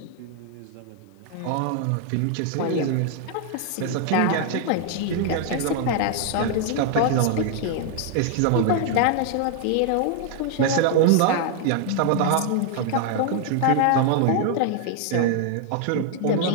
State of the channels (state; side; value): different; both; correlation 0.00